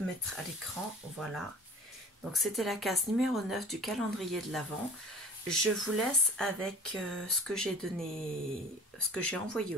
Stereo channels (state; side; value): normal; both; correlation 0.42